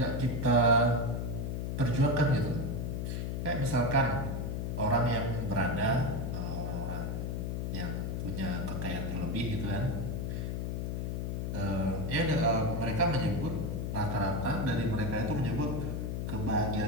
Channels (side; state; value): left; noise; hum, 2 dB below the sound